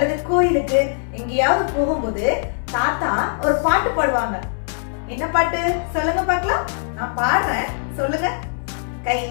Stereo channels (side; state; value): right; silent; digital silence